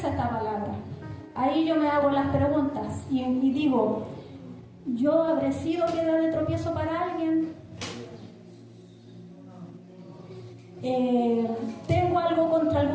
esta palabra? Ahí yo me hago las preguntas y digo, ¿yo habré sido piedra de tropiezo para alguien? ¿Tengo algo contra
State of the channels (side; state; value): both; identical; correlation 1.00